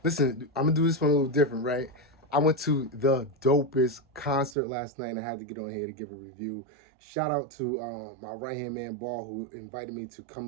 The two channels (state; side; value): drops out; left; at 4.5 s